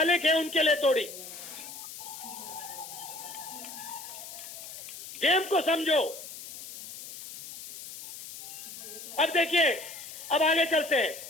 हैं उनके लिए तोड़ी। गेम को समझो। अब देखिए, अब आगे चलते हैं।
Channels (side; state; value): left; noise; hiss, 12 dB below the sound